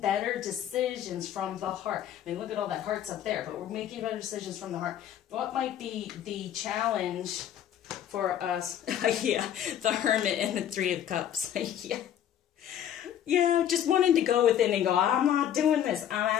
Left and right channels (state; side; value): quieter; right; 10.3 dB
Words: decisions from the heart. I mean, look at all that hearts up there, but we're making better decisions from the heart. What might be the challenge for us? Yeah, the Hermit and the 3 of Cups. Yeah, just wanting to go within and go, I'm not doing this. I'm